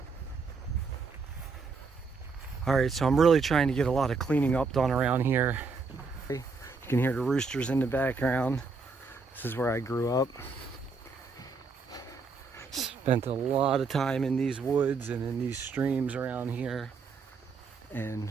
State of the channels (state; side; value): quieter; left; 4.5 dB